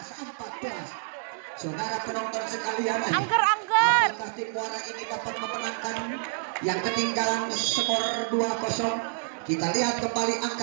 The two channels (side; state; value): left; silent; 59 dB below the other